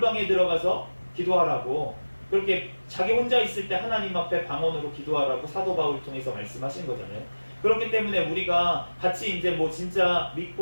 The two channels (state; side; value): inverted; both; correlation -1.00